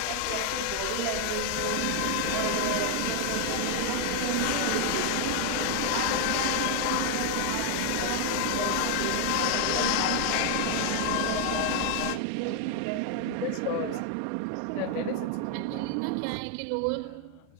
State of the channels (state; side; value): different; both; correlation 0.00